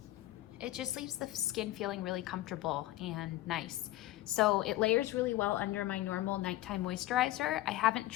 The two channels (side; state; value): right; quieter; 16.1 dB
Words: It just leaves the skin feeling really comfortable and nice. So it layers really well under my normal nighttime moisturizer. I haven't